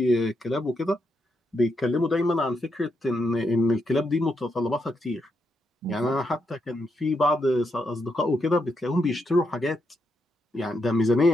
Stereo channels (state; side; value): normal; both; correlation 0.81